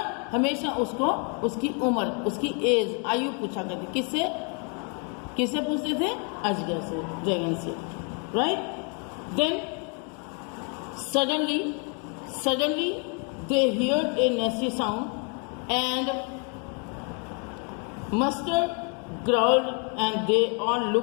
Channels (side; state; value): right; quieter; 37.8 dB